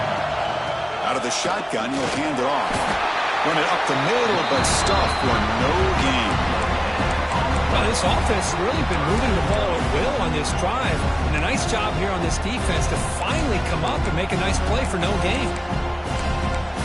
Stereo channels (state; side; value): identical; both; correlation 1.00